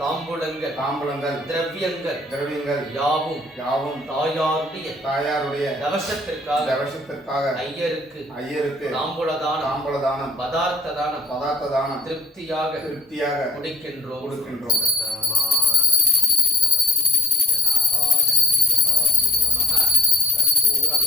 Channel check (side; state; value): both; normal; correlation 0.49